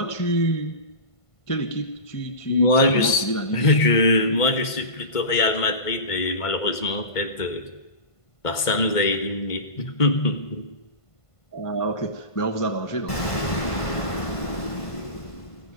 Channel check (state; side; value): late; right; 1.5 ms